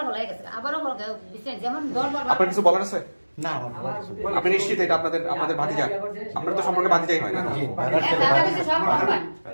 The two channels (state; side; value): inverted; both; correlation -1.00